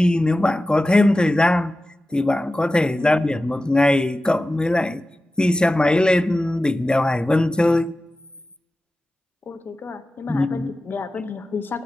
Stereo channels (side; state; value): both; normal; correlation 0.95